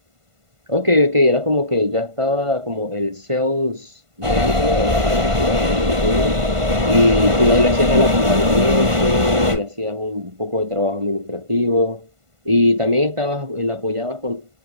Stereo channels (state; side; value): late; left; 1.5 ms